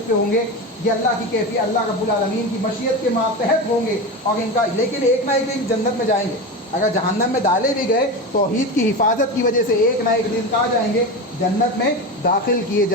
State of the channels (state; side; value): normal; both; correlation 0.22